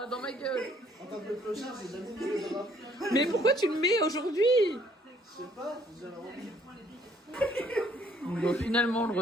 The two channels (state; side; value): normal; both; correlation 0.64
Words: dans ma gueule. en tant que clochard, j'ai jamais mis les draps. Mais pourquoi tu le mets aujourd'hui? Je sais pas, j'avais envie. Bon, finalement, on le